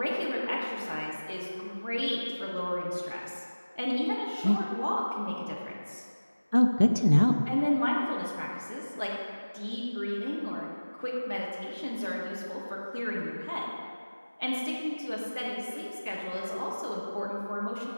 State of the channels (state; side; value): inverted; both; correlation -1.00